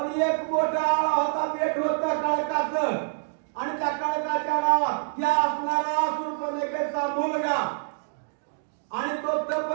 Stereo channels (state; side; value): silent; left; digital silence